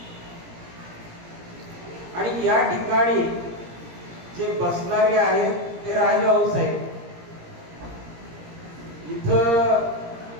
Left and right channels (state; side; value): late; left; 17 ms